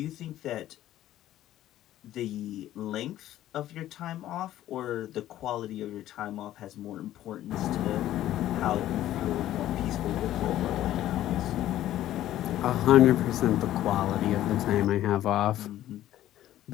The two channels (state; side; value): quieter; right; 13.3 dB